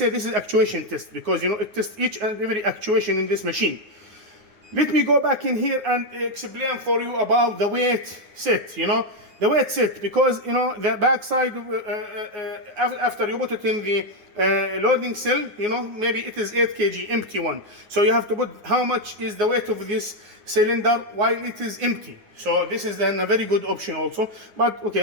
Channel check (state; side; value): late; left; 9.5 ms